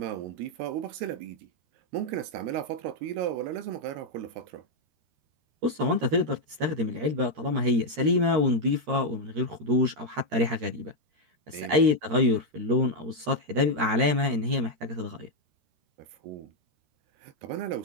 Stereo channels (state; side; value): late; left; 13 ms